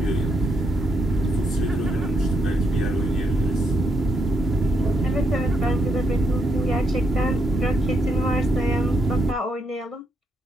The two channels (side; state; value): both; normal; correlation 0.78